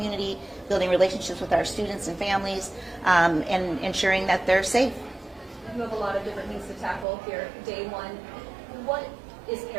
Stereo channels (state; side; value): drops out; left; at 7.1 s